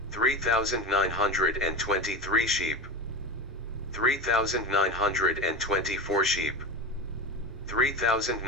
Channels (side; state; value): both; normal; correlation 0.23